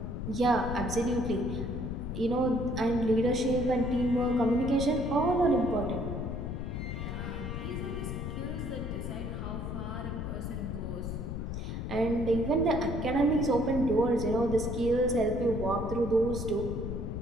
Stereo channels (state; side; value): noise; left; rumble, 4 dB below the sound